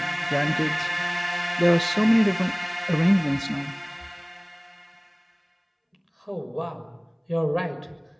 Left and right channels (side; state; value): both; identical; correlation 1.00